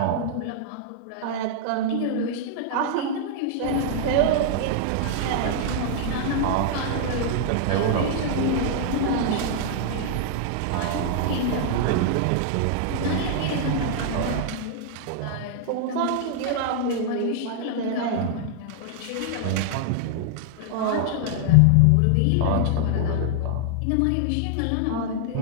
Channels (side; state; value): both; different; correlation -0.01